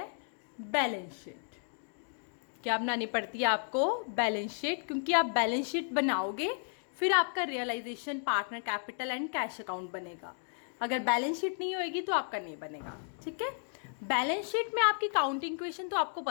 Balance sheet. क्या बनानी पड़ती है आपको? Balance sheet. क्योंकि आप बैलेंस शीट बनाओगे फिर आपका realisation, partner capital and cash account बनेगा. अगर बैलेंस शीट नहीं होएगी तो आपका नहीं बनेगा. ठीक है. बैलेंस शीट में आपकी काउंटिंग इक्वेशन तो आपको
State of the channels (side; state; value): right; silent; 56 dB below the other